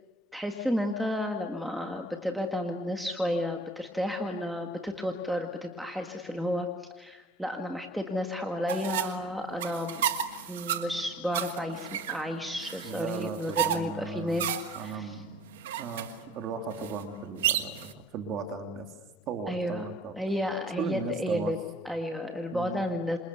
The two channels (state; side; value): normal; both; correlation 0.51